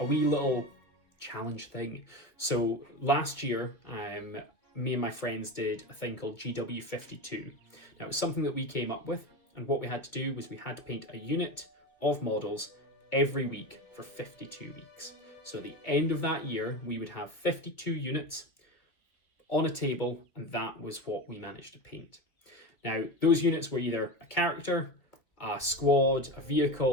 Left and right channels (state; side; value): late; right; 2.4 ms